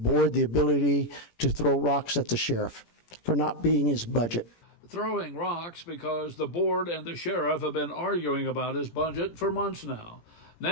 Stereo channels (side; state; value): right; late; 17 ms